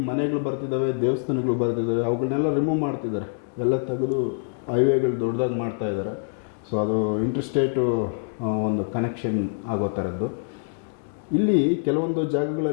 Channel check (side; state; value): right; silent; digital silence